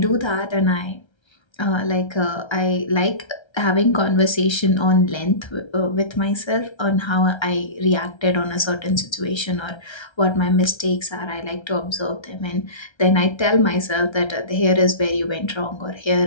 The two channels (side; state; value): right; late; 1.3 ms